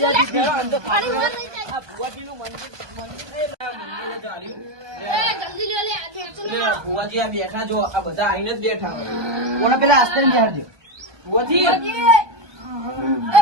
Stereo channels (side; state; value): left; late; 1.2 ms